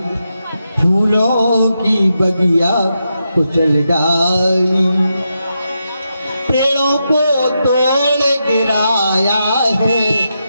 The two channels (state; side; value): inverted; both; correlation -0.86